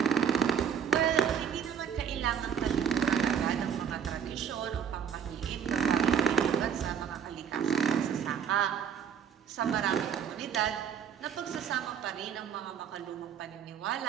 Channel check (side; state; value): left; quieter; 7.9 dB